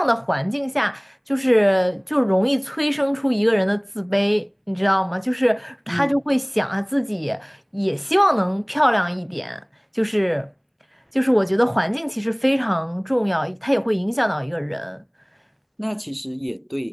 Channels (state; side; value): identical; both; correlation 1.00